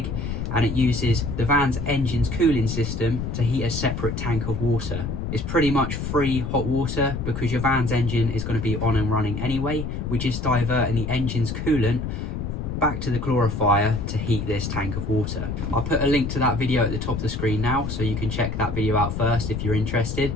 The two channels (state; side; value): noise; left; rumble, 4 dB below the sound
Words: and it uses the van's engine's cooling system to heat a separate tank of water. It's pretty much free hot water because your van's engine is going to be on and running anyway. We're just diverting the engine's coolant back to the glorifier to heat this tank of water. I'll put a link to that video at the top of the screen now, so you can check that video out first if you're interested.